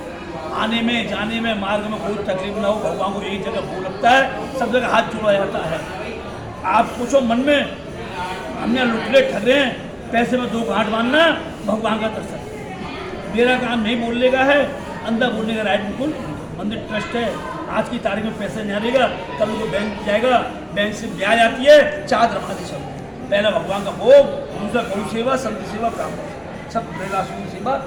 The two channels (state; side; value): identical; both; correlation 1.00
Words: आने में जाने में मार्ग में कोई तकलीफ ना हो, भगवान को एक जगह भोग लगता है, सब जगह हाथ जोड़ा जाता है। आप सोचो मन में, हमने लुटले ठगे हैं, पैसे में 2 गांठ बांधना, भगवान का दर्शन। मेरा काम नहीं बोलने का है, अंदर बोलने का राइट बिल्कुल। मंदिर ट्रस्ट है, आज की तारीख में पैसे नहीं आएगा, कल वो बैंक जाएगा, बैंक से ब्याज आती है, 4 धर्मादि सब। पहला भगवान का भोग, दूसरा गौ सेवा, संत सेवा, ब्राह्मण सब बेलासुन सेवा।